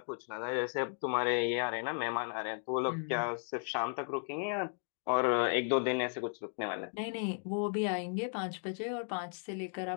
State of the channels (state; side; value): silent; right; 54 dB below the other